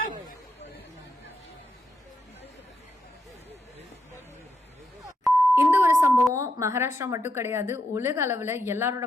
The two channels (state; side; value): normal; both; correlation 0.81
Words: இந்த ஒரு சம்பவம் மகாராஷ்டிரா மட்டும் கிடையாது. உலக அளவுல எல்லாரோட